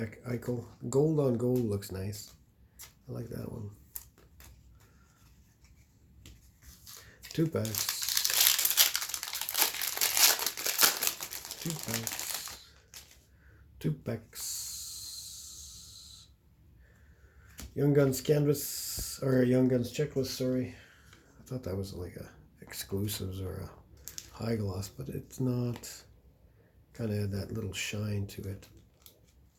Eichel. Gold on gold looks nice. I like that one. 2 packs. 2 packs. 2 packs. Young Guns canvas, or Young Guns checklist, sorry. I thought that was like a exclusives or a high gloss, but it's not. kind of had that little shine to it.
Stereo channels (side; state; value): both; identical; correlation 1.00